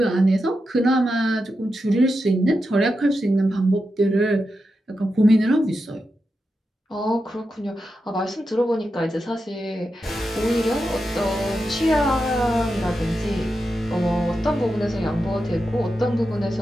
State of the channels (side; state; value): both; normal; correlation 0.88